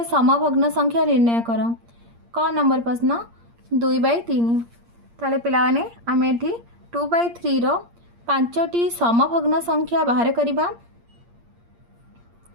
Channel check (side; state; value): left; late; 8.6 ms